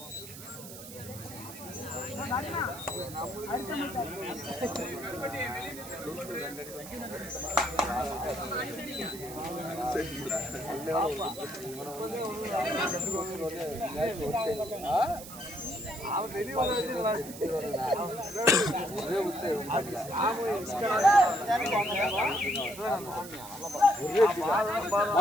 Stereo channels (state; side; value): noise; right; hiss, 13 dB below the sound